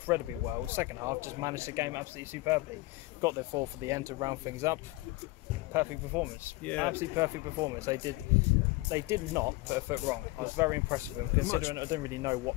well. Second half, just managed the game absolutely superbly. Got their 4 for the end to round things up. Perfect performance. Yeah. Absolutely perfect performance. They did not put a foot wrong. I was very impressed with them, considering I didn't really know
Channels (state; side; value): quieter; right; 20.8 dB